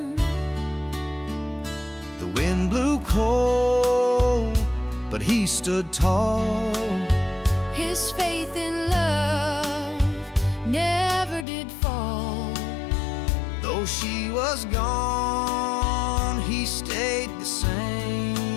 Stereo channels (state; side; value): drops out; right; at 11.5 s